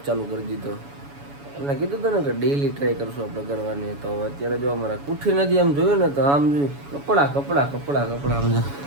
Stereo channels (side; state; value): left; late; 7.1 ms